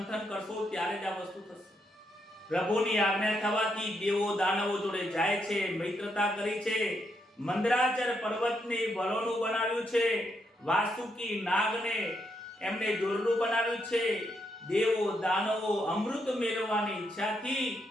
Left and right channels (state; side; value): normal; both; correlation 0.79